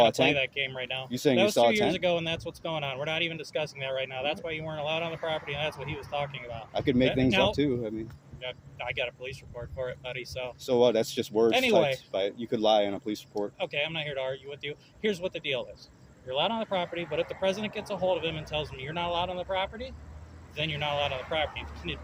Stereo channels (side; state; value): both; identical; correlation 1.00